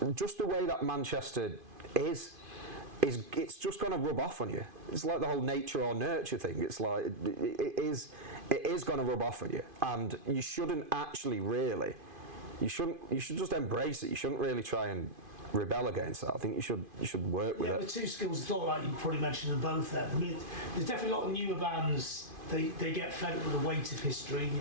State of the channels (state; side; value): late; left; 2.5 ms